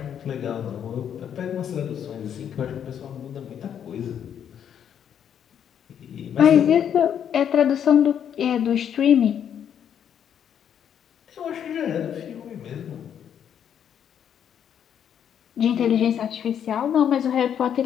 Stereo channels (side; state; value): right; quieter; 8.9 dB